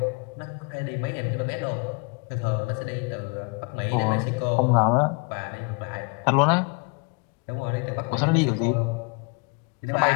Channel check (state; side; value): quieter; right; 33.5 dB